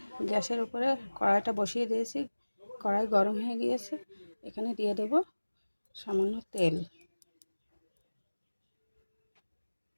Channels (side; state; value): both; inverted; correlation -1.00